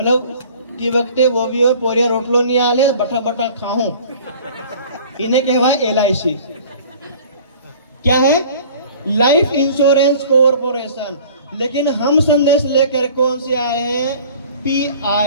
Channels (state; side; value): inverted; both; correlation -0.47